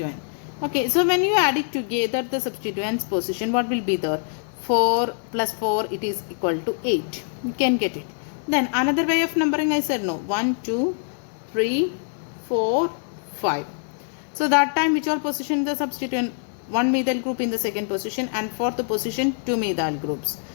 Okay, so when you add it together, the substituents position, what will be there? 4 plus 4, it is equal to 8. You can get it. Then another way of numbering, I said no. 1, 2, 3, 4, 5. So that time which all position the substituent? 1 methyl group in the second position, and fourth position 2 methyl groups.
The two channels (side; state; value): right; silent; digital silence